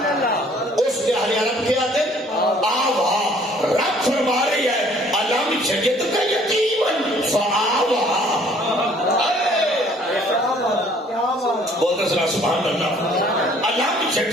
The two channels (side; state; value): both; normal; correlation 0.58